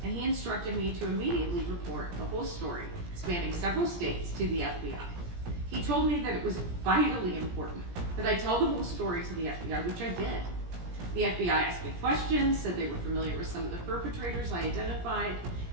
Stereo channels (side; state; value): left; late; 17 ms